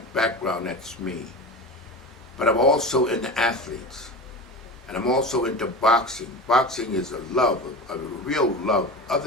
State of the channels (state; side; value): normal; both; correlation 0.29